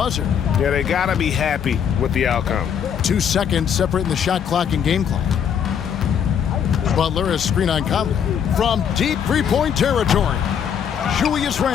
Yeah, they got to be happy with the outcome. 2 seconds separating the shot clock and game clock. Butler has screen on Conley. From deep three-point territory, Julius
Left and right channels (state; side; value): quieter; right; 8.1 dB